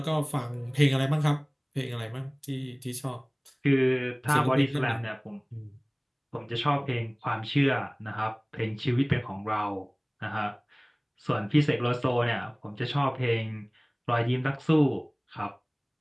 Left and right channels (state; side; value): identical; both; correlation 1.00